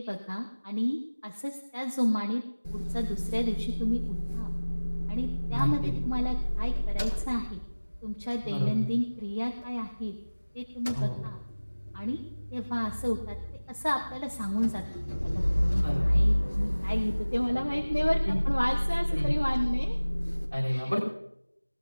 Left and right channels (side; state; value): both; inverted; correlation -1.00